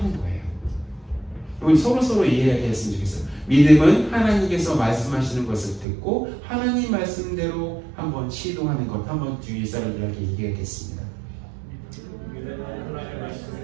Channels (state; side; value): drops out; left; at 5.9 s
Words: 거예요. 우리 서로 이해했으면 좋겠어요. 믿음은 하나님께서 말씀하시는 것을 듣고 하나님 말씀대로 한번 시도하는 것. 한번 주위 사람들에게 얘기하겠습니다.